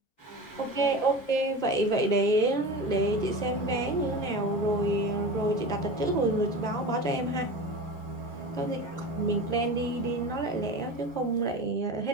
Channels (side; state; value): right; late; 7.1 ms